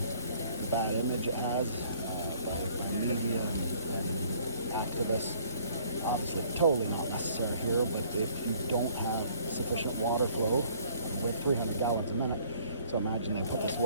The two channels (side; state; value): both; inverted; correlation -0.58